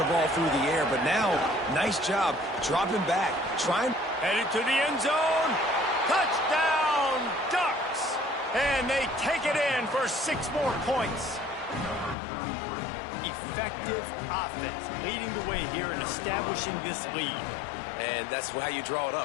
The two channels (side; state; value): right; drops out; at 12.2 s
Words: ball through the air. But now, nice job dropping back, trying. Headed to the end zone. Touchdown, Ducks. And they take it in for 6 more points. Effective offense leading the way here and establishing this lead. And that's how you draw it